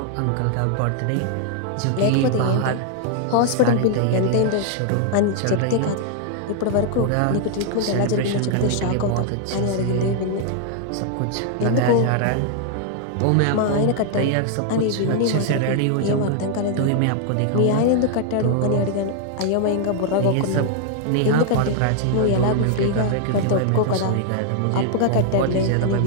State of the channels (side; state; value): both; different; correlation 0.00